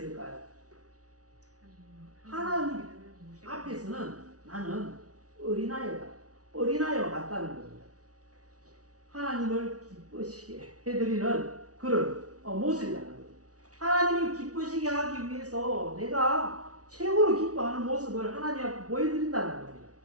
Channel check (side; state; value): left; late; 0.67 ms